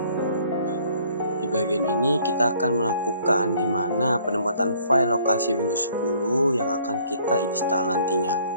Di bagian ini kita akan melakukan di mana penempatan file lokasi Windows 10 yang akan kita install nantinya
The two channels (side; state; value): both; inverted; correlation -0.60